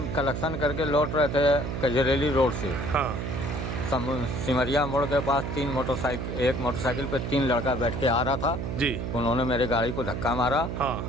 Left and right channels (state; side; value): noise; right; hum, 4 dB below the sound